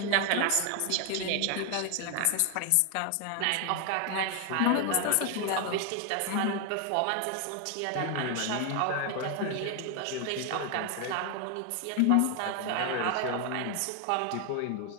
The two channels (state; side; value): different; both; correlation 0.00